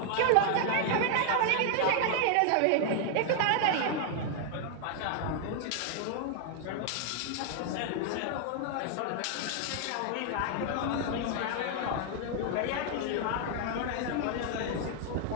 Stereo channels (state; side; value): different; both; correlation 0.00